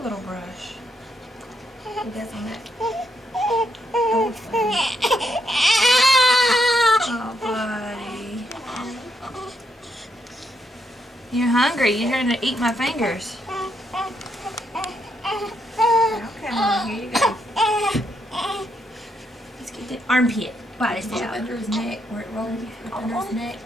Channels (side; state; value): both; normal; correlation 0.78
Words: little brush. He does on that. Oh, buddy. You're hungry. You're trying to eat my fingers. Okay, Mom, here you go. Let's get the armpit. Body It's out. under his neck, where it rolls under his neck.